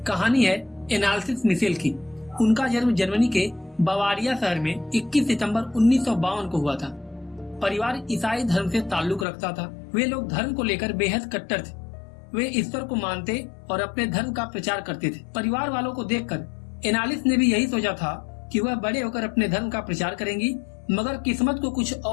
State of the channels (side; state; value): right; drops out; at 9.2 s